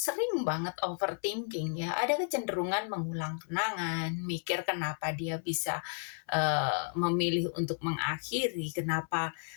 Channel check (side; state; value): right; silent; 56 dB below the other